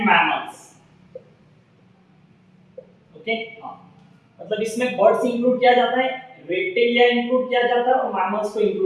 mammals. Okay, मतलब इसमें बर्ड्स इंक्लूड किया जाता है, रेप्टेलिया इंक्लूड किया जाता है और मैमल्स को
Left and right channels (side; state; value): both; identical; correlation 1.00